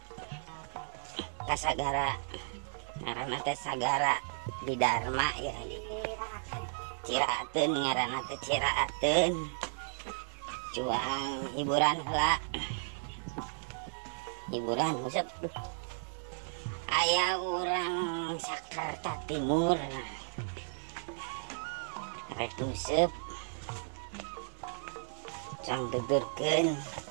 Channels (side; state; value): left; silent; digital silence